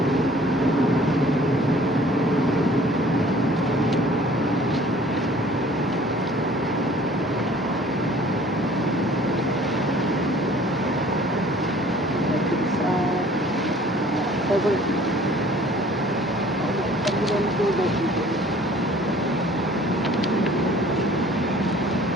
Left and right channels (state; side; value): normal; both; correlation 0.52